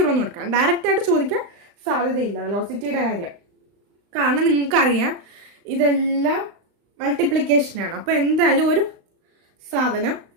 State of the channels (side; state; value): left; late; 35 ms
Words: എന്ന് കൊടുക്കാം. ഡയറക്റ്റ് ആയിട്ട് ചോദിക്കാൻ സാധ്യതയില്ല വെലോസിറ്റിയുടെ കാര്യം. കാരണം നിങ്ങൾക്കറിയാം ഇതെല്ലാം മൾട്ടിപ്ലിക്കേഷനാണ്. അപ്പോൾ എന്തായാലും ഒരു സാധനം